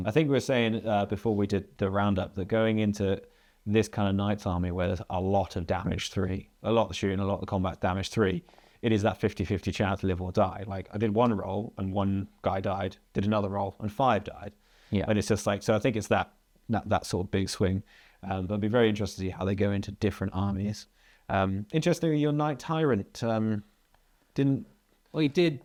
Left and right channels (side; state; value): both; identical; correlation 1.00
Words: I think we were saying before we did the roundup that going into this kind of Knights army where there's a lot of damage 3, a lot of shooting, a lot of combat damage 3, it is that 50-50 chance to live or die. Like I did 1 roll and 1 guy died, did another roll and 5 died. Yeah. And it's just like, so I think it's that sort of big swing. But it'd be very interesting to see how they go into different armies. Interestingly, your Knight Tyrant didn't. Well, he did